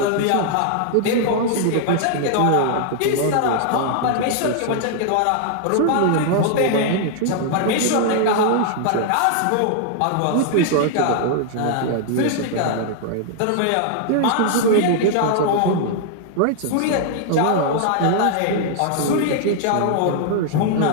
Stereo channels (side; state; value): both; different; correlation 0.00